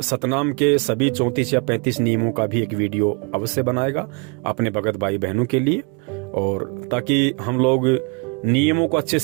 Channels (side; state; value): left; quieter; 33.3 dB